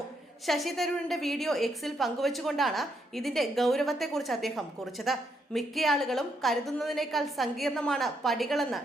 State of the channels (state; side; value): normal; both; correlation 0.77